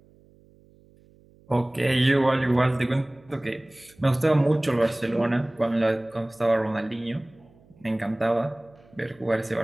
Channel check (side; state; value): right; noise; hum, 29 dB below the sound